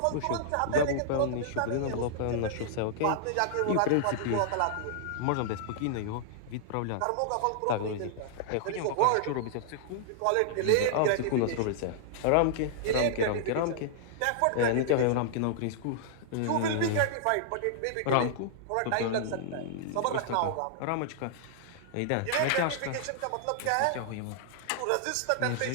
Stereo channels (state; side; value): different; both; correlation -0.01